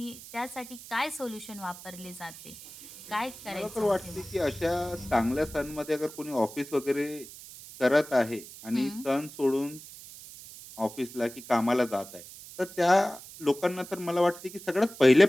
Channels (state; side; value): noise; right; hiss, 16 dB below the sound